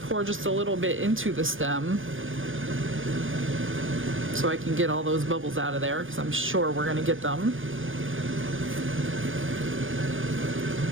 pour just a little bit into the stem so I can get all those bubbles out of there, because I'm sure we're going to get them.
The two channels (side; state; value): left; late; 0.58 ms